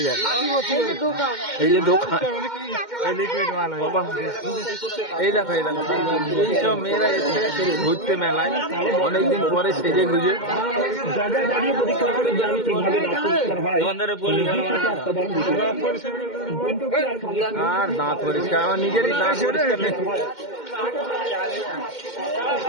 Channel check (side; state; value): right; late; 2.1 ms